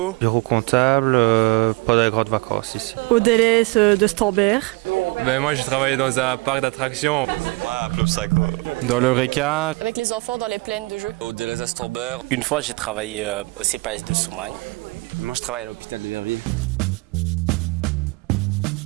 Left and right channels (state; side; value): quieter; left; 25.2 dB